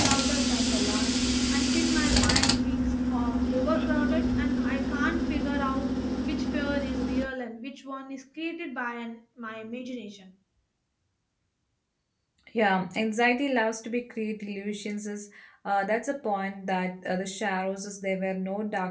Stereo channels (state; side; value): identical; both; correlation 1.00